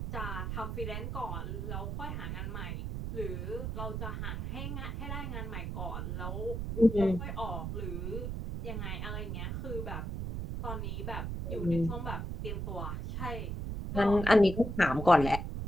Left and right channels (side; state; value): right; noise; rumble, 4 dB below the sound